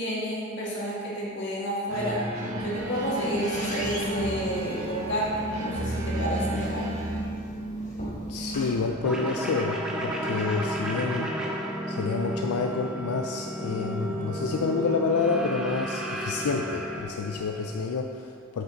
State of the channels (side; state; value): both; normal; correlation 0.25